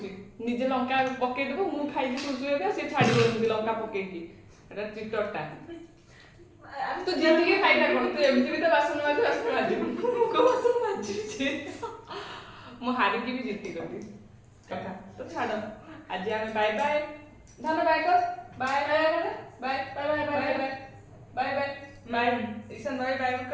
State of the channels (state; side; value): identical; both; correlation 1.00